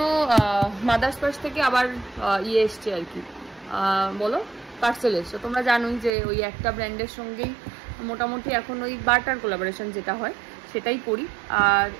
মাদার্স পার্স থেকে আবার ইয়ে এসছে আর কি, বলো পার্সেল এসছে। তোমরা জানোই যে ওই একটা ব্র্যান্ডের সঙ্গেই মোটামুটি এখন ওই বার্টার কোলাবোরেশন যেটা হয় সেটাই করি। আর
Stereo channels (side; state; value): left; drops out; at 6.1 s